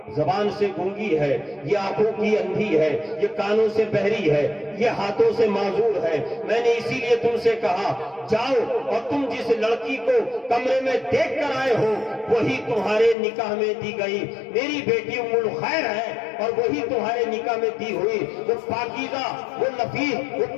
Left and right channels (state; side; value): drops out; right; at 13.2 s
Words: زبان سے گونگی ہے، یہ آنکھوں کی اندھی ہے، یہ کانوں سے بہری ہے، یہ ہاتھوں سے معذور ہے۔ میں نے اسی لیے تم سے کہا جاؤ، اور تم جس لڑکی کو کمرے میں دیکھ کر آئے ہو وہی تمہارے نکاح میں دی گئی میری بیٹی ام الخیر ہے، اور وہی تمہارے نکاح میں دی ہوئی وہ پاکیزہ، وہ نفیس، وہ